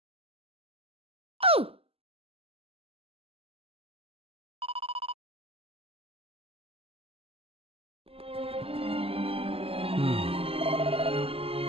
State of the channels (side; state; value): left; late; 0.28 ms